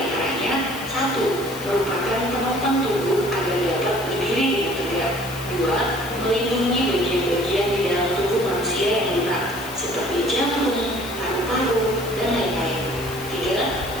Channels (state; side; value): noise; left; hiss, 14 dB below the sound